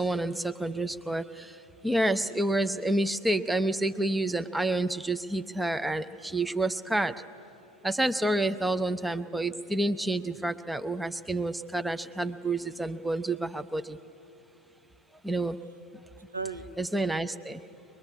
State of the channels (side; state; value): both; normal; correlation 0.84